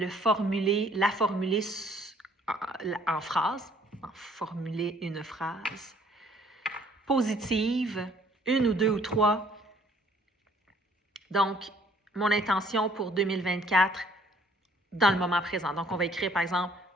formuler en phrase, formuler une phrase positive, 1 ou 2 ou 3. Donc, mon intention pour 2024 dans le moment présent. Donc, on va écrire, par exemple,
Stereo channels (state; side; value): normal; both; correlation 0.60